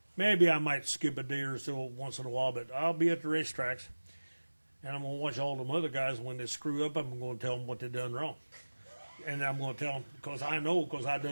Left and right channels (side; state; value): both; inverted; correlation -1.00